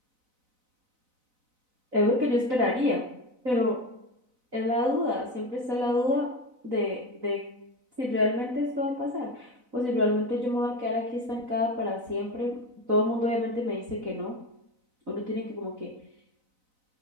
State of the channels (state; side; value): late; left; 4.0 ms